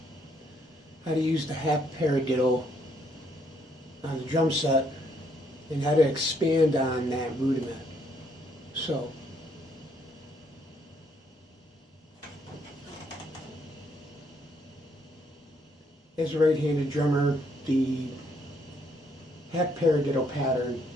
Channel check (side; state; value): both; normal; correlation 0.70